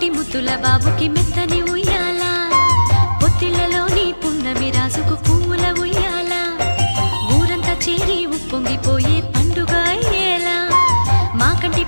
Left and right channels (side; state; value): both; inverted; correlation -1.00